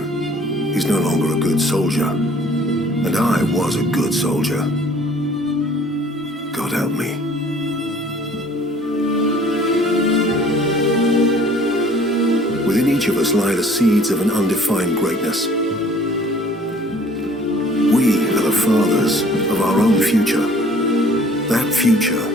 he's no longer a good soldier. And I was a good soldier. God help me. Within each of us lie the seeds of an undefined greatness. We are the fathers of our own future. That future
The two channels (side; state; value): both; normal; correlation 0.54